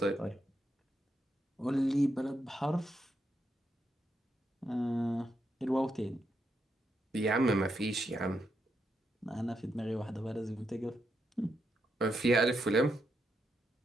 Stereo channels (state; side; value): normal; both; correlation 0.82